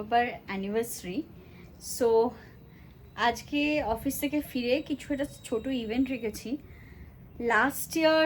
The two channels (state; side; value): identical; both; correlation 1.00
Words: অ্যানিভার্সারি। সো আজকে অফিস থেকে ফিরে কিছু একটা ছোট ইভেন্ট রেখেছি। লাস্ট ইয়ার